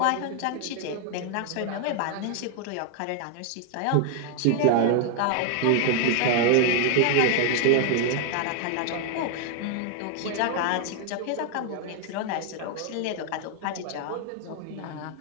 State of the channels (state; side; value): different; both; correlation 0.00